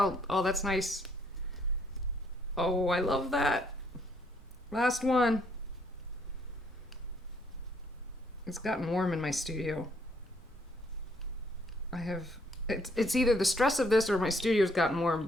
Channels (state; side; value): normal; both; correlation 0.68